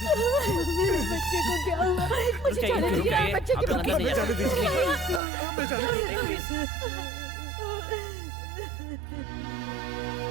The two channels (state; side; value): drops out; left; at 5.2 s